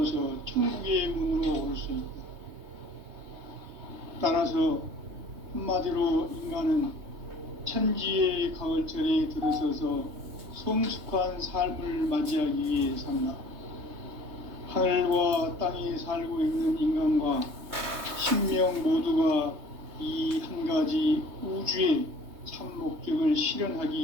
천국의 문으로 올 수 있다. 따라서 한마디로 인간은 천지의 가을철에 들어서서 성숙한 삶을 맞이하기 위해 산다. 하늘과 땅에 살고 있는 인간과 신명 모두가 이 한 가지 우주의 참 목적을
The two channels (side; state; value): left; late; 3.2 ms